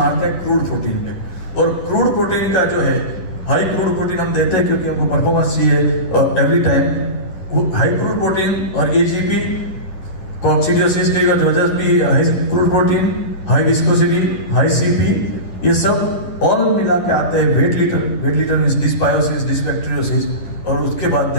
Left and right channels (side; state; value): right; late; 10 ms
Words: हैं क्रूड प्रोटीन पे, और क्रूड प्रोटीन का जो है हाई क्रूड प्रोटीन हम देते हैं क्योंकि हमको परफॉर्मेंस चाहिए every time. High crude protein और एजीपी कॉक्सिडियोसिस की वजह भी high crude protein, high viscosity, high CP, ये सब ऑल मिला के आते हैं wet litter. Wet litter means dysbiosis, dysbacteriosis, और उसके बाद